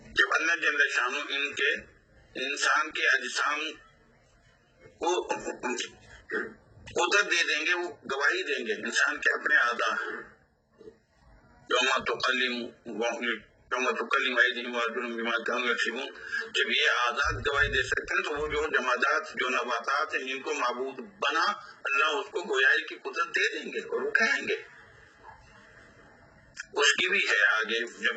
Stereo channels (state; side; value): identical; both; correlation 1.00